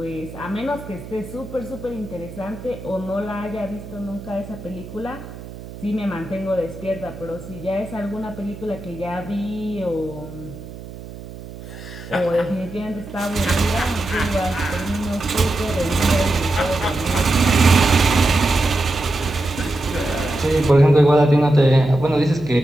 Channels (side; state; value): right; noise; hum, 14 dB below the sound